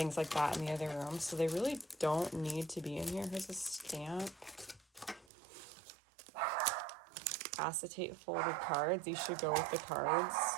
like that in the other room, so they really don't need to be in here. Here's a stamp. Acetate folded cards. These should go with the cards.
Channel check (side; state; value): left; drops out; at 5.2 s